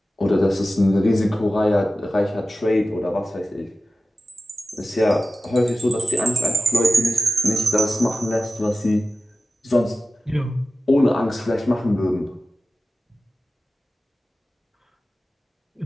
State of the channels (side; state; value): both; normal; correlation 0.94